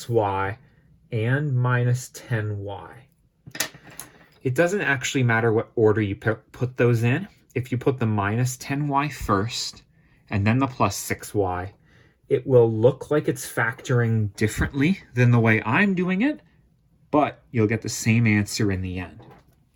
and -10y. It doesn't actually matter what order you put those in. If you put the -10y first and then the +6y, it will look like it's factoring differently than the way I'm doing it, but you'll get the same answer in the end.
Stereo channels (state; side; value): identical; both; correlation 1.00